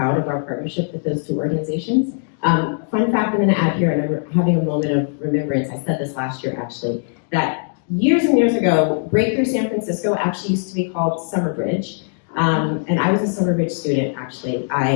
of our partnership with those two organizations. Fun fact I'm going to add here, and I'm having a moment of remembrance. I said this last year actually, that years and years ago, Breakthrough San Francisco actually used to be called Summerbridge. And I was a Summerbridge student, actually.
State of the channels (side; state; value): right; silent; digital silence